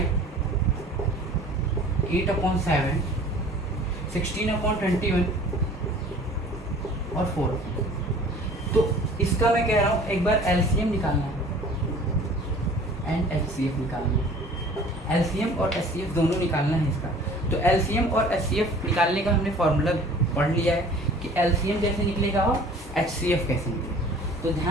8/7, 16/21 और 4। तो इसका मैं कह रहा हूँ एक बार एलसीएम निकालना है एंड एचसीएफ निकालना है, एलसीएम और एचसीएफ दोनों निकालना है इसका। तो एलसीएम और एचसीएफ निकालने का हमने फॉर्मूला पढ़ लिया है कि एलसीएम कैसे निकलेगा और एचसीएफ कैसे निकलेगा। तो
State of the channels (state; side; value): normal; both; correlation 0.48